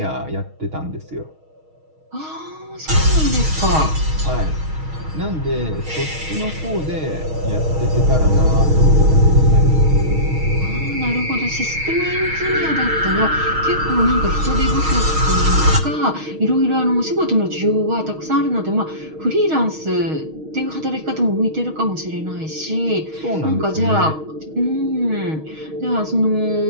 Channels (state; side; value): late; left; 6.4 ms